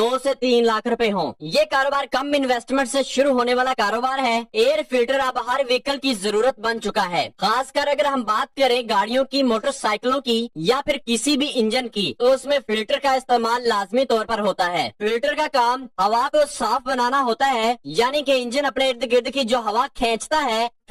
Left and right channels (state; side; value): identical; both; correlation 1.00